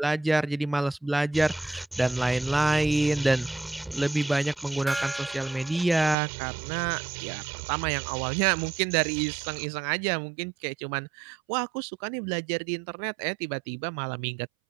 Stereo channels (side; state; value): left; drops out; at 6.2 s